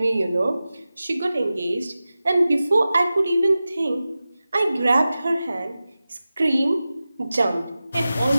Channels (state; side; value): inverted; both; correlation -0.95